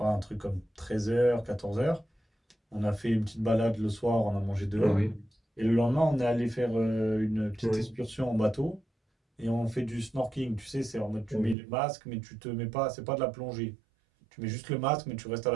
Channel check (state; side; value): drops out; left; at 11.6 s